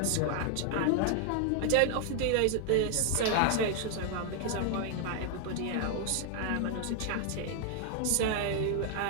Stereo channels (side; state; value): both; different; correlation 0.00